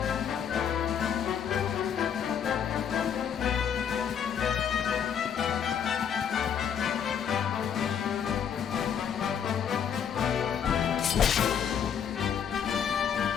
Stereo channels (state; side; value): quieter; right; 8.1 dB